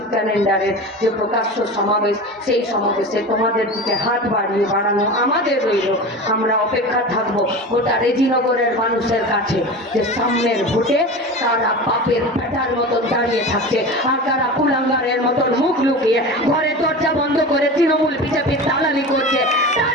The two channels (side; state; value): both; normal; correlation 0.30